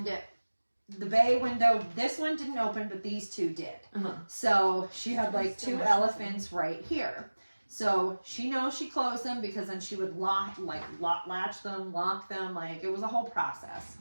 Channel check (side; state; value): both; inverted; correlation -1.00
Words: the bay window, this one didn't open, but these 2 did. So she had like 2 elephants right here. So she knows she closed them because then she would latch them, lock them, like it was a whole process.